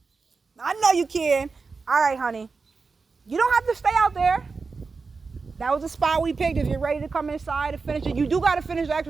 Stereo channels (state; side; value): quieter; left; 4.5 dB